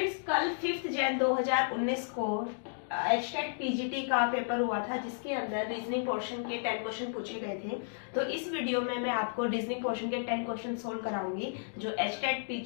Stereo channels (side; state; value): right; silent; digital silence